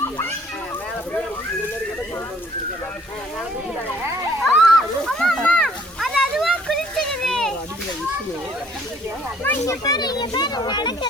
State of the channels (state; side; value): normal; both; correlation 0.60